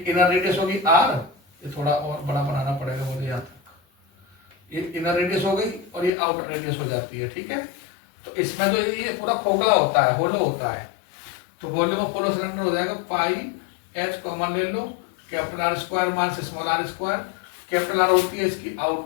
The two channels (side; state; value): right; drops out; at 6.1 s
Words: इनर रेडियस होगी R, ये थोड़ा और बड़ा बनाना पड़ेगा मुझे यहाँ तक। ये इनर रेडियस हो गई और ये आउटर रेडियस हो जाती है, ठीक है। तो इसमें जो ये पूरा खोखला होता है, होलो होता है। तो वॉल्यूम ऑफ होलो सिलेंडर हो जाएगा πH, कॉमन ले लो, R² minus r²। Capital R होती है इसकी